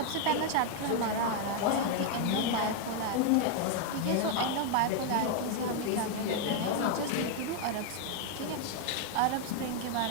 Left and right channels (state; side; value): different; both; correlation 0.01